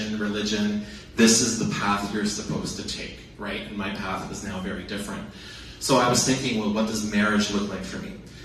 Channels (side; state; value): both; identical; correlation 1.00